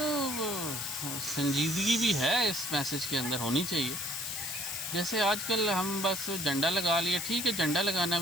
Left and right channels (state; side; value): noise; left; hiss, 4 dB below the sound